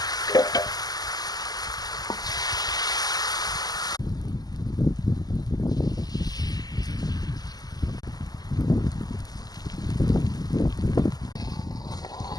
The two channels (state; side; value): late; right; 0.19 ms